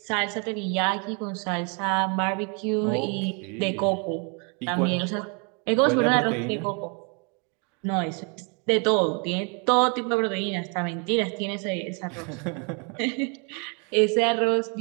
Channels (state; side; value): quieter; left; 36.2 dB